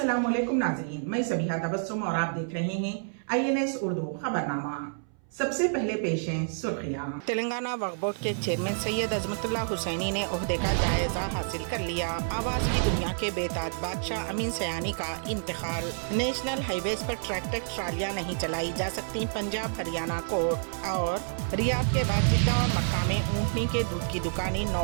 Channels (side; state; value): left; silent; 59 dB below the other